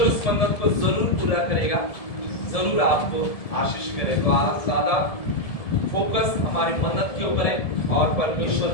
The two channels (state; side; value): late; right; 1.7 ms